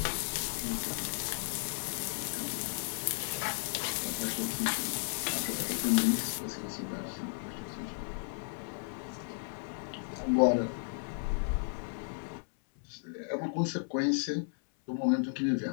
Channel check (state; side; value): silent; right; 55 dB below the other